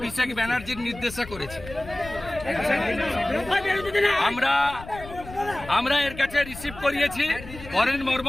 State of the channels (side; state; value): left; noise; rumble, 15 dB below the sound